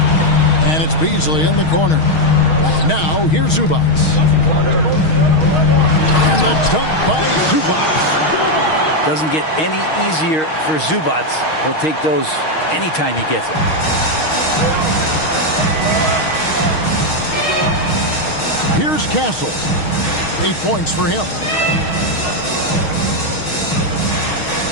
And it's Beasley in the corner. Now here's Zubac. And the dunk by Zubac. Doesn't get any easier for Zubac. He'll take those anytime he gets it. Here's Castle. 8 points for him.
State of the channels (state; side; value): late; right; 6.4 ms